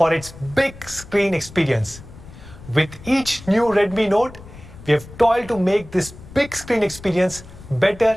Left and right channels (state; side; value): noise; left; rumble, 18 dB below the sound